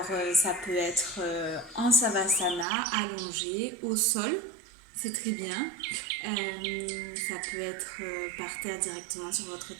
ça peut être en savasana, allongé, au sol, c'est très bien. Ça peut être par terre directement sur votre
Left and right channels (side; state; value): left; drops out; at 2.7 s